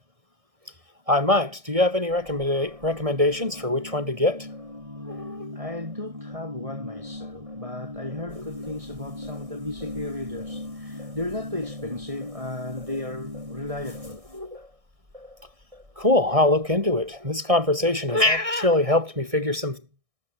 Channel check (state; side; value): late; left; 1.6 ms